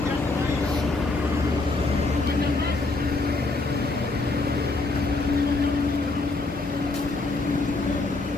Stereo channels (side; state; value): right; quieter; 3.3 dB